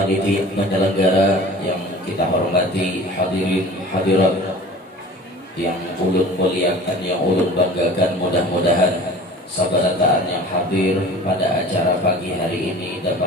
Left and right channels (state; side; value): normal; both; correlation 0.42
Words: penyelenggara yang kita hormati, hadirin hadirat yang ulun muliakan, yang ulun banggakan, mudah-mudahan sabarataan yang hadir pada acara pagi hari ini